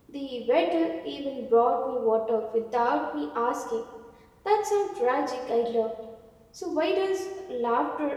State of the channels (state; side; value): identical; both; correlation 1.00